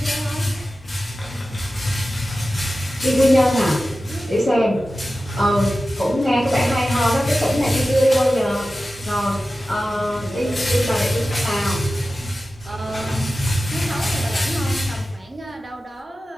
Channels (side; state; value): both; normal; correlation 0.94